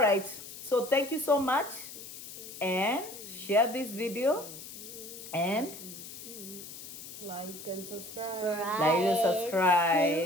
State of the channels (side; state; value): left; noise; hiss, 12 dB below the sound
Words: So thank you so much. And share this video. And like and subscribe.